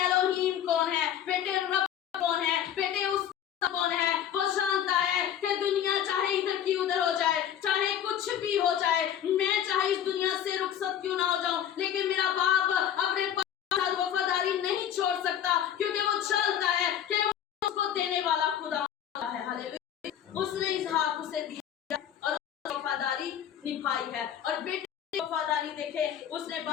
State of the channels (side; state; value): right; quieter; 9.9 dB